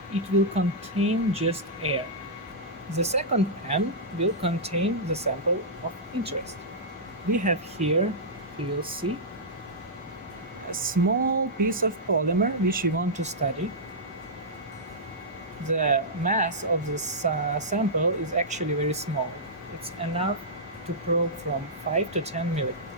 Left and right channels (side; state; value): both; normal; correlation -0.11